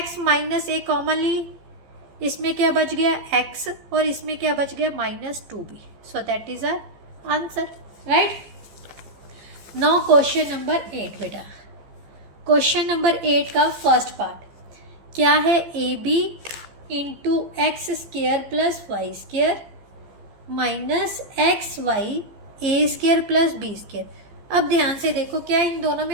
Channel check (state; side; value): late; left; 15 ms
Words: माइनस a कॉमन ली, इसमें क्या बच गया x और इसमें क्या बच गया minus 2b, so that is our answer, right. Now question number 8 बेटा, क्वेश्चन नंबर 8 का फर्स्ट पार्ट क्या है, ab into x square plus y square minus x y a square plus b square. अब ध्यान से देखो, क्या इन दोनों